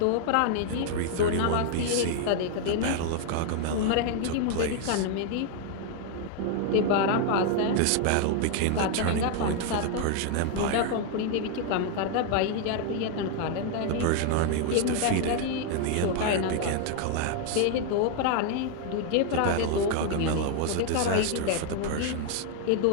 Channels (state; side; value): different; both; correlation 0.00